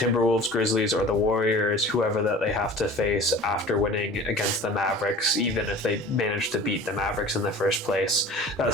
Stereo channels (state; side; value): normal; both; correlation 0.42